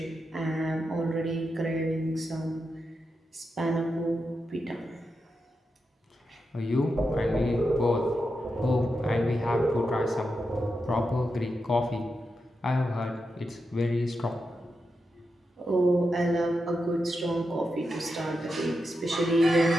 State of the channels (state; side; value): normal; both; correlation 0.87